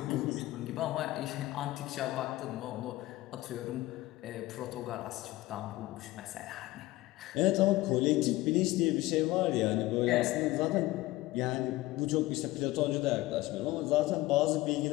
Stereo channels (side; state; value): right; quieter; 18.1 dB